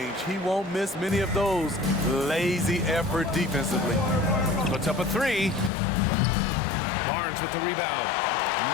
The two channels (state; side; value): drops out; right; at 5.7 s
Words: He won't miss many of those. Lazy effort defensively. Puts up a 3. Barnes with the rebound.